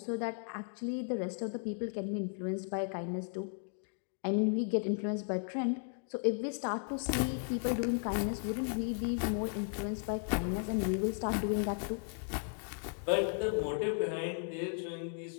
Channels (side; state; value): right; silent; 54 dB below the other